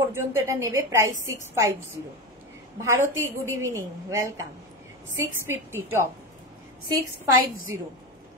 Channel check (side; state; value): both; normal; correlation 0.19